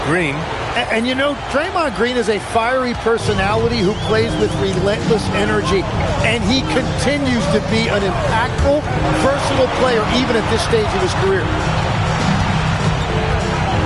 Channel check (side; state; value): both; identical; correlation 1.00